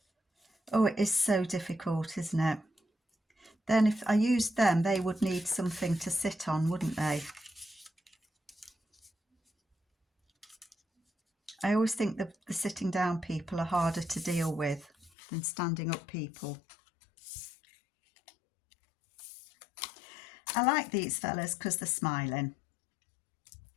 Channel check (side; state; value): right; drops out; at 15.1 s